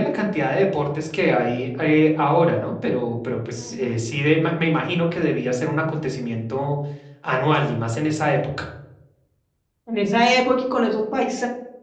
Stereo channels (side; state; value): both; identical; correlation 1.00